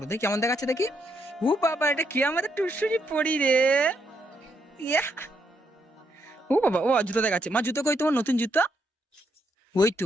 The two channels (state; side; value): normal; both; correlation 0.77